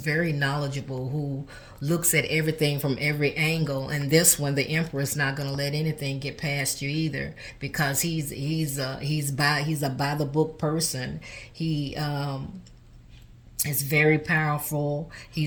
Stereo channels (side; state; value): both; identical; correlation 1.00